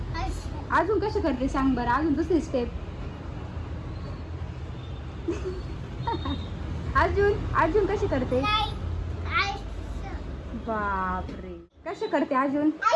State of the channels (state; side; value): identical; both; correlation 1.00